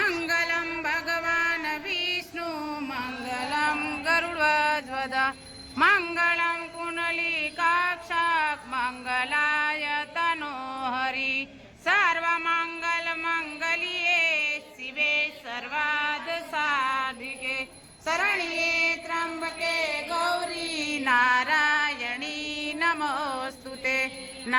ભગવાન વિષ્ણુ મંગલમ ગરુડધ્વજ મંગલમ કુંડલીકાક્ષક મંગલાય તનોહરી સર્વમંગલ મંગલ્યે શિવે સર્વાદ સાધિકે શરણ્યે ત્રંબકે ગૌરી નારાયણી નમોસ્તુતે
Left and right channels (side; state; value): both; identical; correlation 1.00